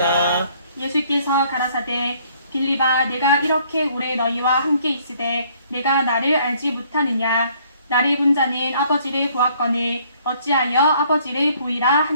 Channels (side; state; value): both; inverted; correlation -0.62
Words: 예수께서 가라사대 빌립아 내가 이렇게 오래 너희와 함께 있으되 내가 나를 알지 못하느냐. 나를 본 자는 아버지를 보았거늘 어찌하여 아버지를 보이라